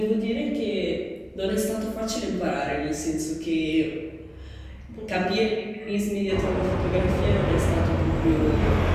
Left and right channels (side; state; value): both; identical; correlation 1.00